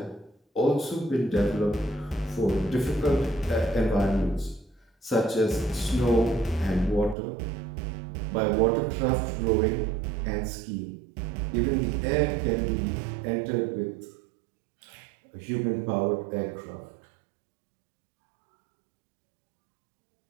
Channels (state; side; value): drops out; left; at 7.2 s